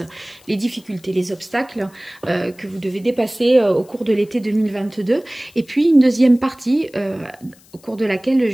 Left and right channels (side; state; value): left; noise; hiss, 28 dB below the sound